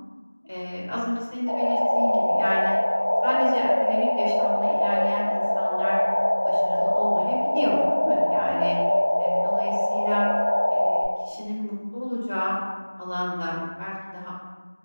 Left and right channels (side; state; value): both; inverted; correlation -1.00